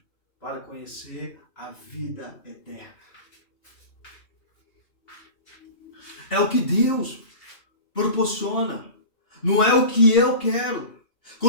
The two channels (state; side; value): late; right; 2.7 ms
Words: para conhecer a vida eterna. É o que Deus proporciona. Não é o que eu quero.